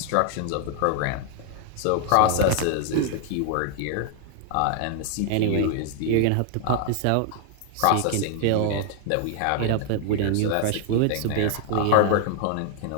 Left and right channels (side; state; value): both; different; correlation 0.00